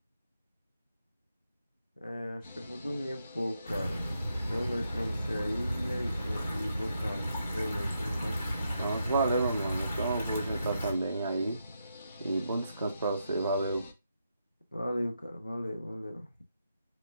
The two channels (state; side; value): inverted; both; correlation -0.82